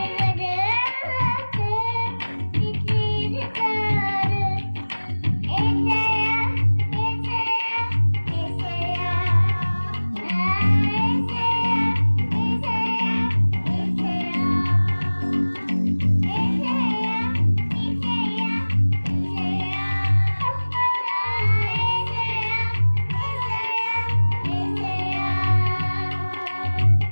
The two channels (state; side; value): inverted; both; correlation -1.00